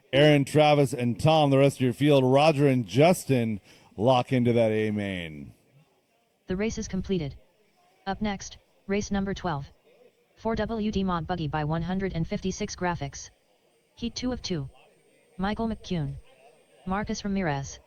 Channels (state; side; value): identical; both; correlation 1.00